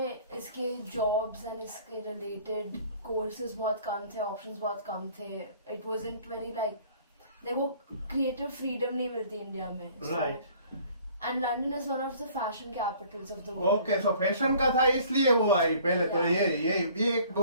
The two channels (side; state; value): both; inverted; correlation -0.53